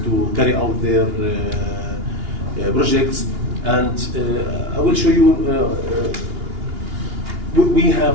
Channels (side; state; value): left; late; 2.8 ms